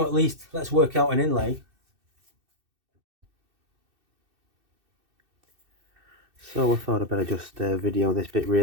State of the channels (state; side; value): late; left; 2.6 ms